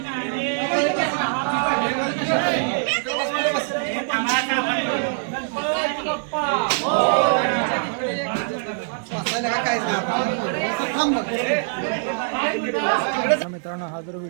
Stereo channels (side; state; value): left; silent; digital silence